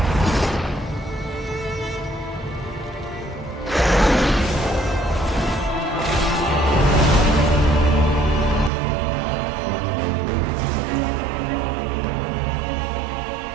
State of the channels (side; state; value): left; drops out; at 8.7 s